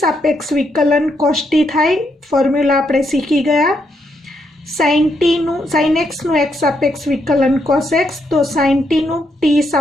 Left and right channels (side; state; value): both; normal; correlation 0.78